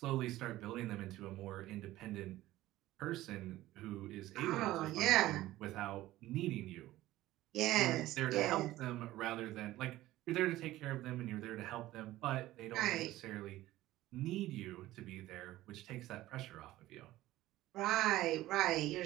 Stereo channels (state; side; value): quieter; left; 16.0 dB